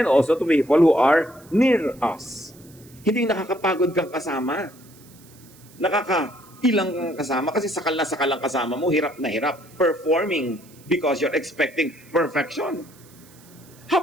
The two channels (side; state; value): right; noise; hiss, 25 dB below the sound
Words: also to people who are near us. Hindi nakakapagod kang kasama. Nakakailang kang kasama kasi sakal na sakal ang kasama mo, hirap na hirap. Performing because you're expecting perfection. How